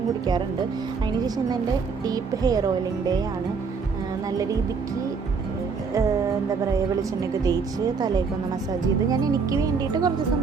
കുടിക്കാറുണ്ട്. അതിന് ശേഷം ഇന്ന് എൻ്റെ ഡീപ്പ് ഹെയർ ഓയിലിംഗ് ഡേ ആണ്. നല്ല രീതിക്ക് എന്താ പറയുക, വെളിച്ചെണ്ണയൊക്കെ തേച്ച് തലയൊക്കെ മസാജ് ചെയ്ത് ഞാൻ എനിക്ക് വേണ്ടിയിട്ട് കുറച്ച്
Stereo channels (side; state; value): left; quieter; 5.2 dB